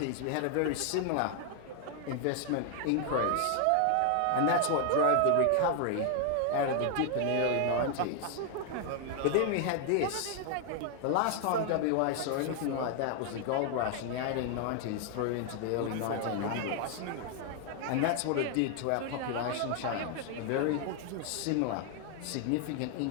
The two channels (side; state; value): both; different; correlation 0.00